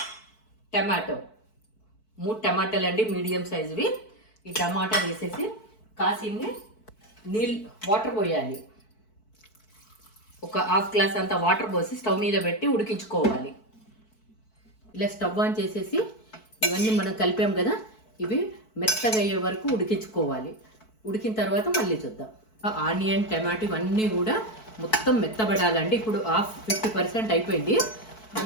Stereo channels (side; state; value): right; late; 4.6 ms